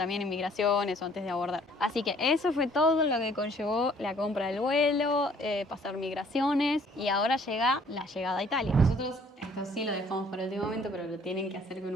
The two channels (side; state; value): both; normal; correlation 0.59